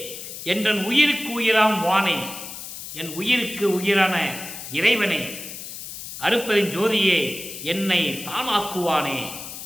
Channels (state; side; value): noise; left; hiss, 10 dB below the sound